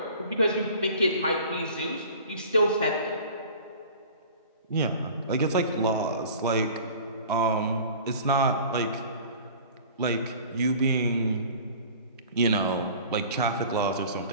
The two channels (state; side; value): inverted; both; correlation -0.43